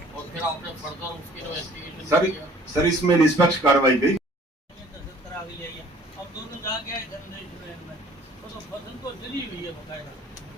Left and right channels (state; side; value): normal; both; correlation 0.53